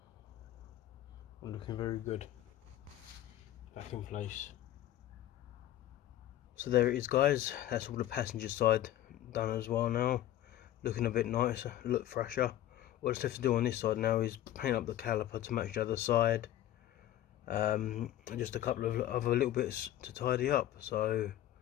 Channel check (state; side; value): quieter; right; 13.2 dB